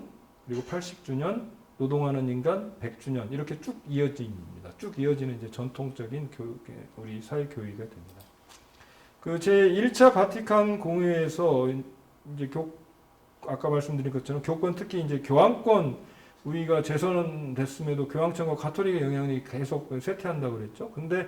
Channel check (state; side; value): identical; both; correlation 1.00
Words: 그리고 80주년 노동하는 인간 100주년 이렇게 쭉 이어집니다. 쭉 이어지는 이제 전통적인 우리 사회 교의가 됩니다. 그 제 1차 바티칸 공회에서 이제 아까 말씀드린 것처럼 교권 특히 이제 교황권 우리가 재선됐음에도 교황청과 가톨릭의 영향이 계속 쇠퇴한다고 그랬죠. 근데